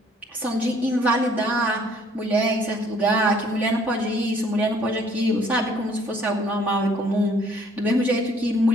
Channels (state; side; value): normal; both; correlation 0.60